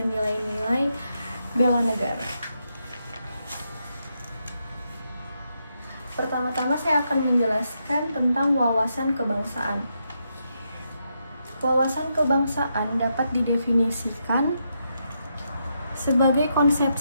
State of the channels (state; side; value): inverted; both; correlation -0.82